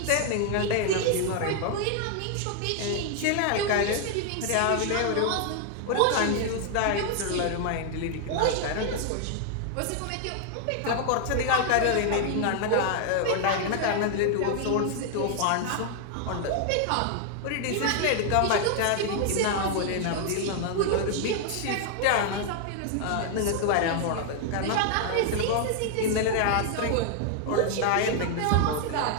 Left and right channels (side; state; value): both; different; correlation 0.00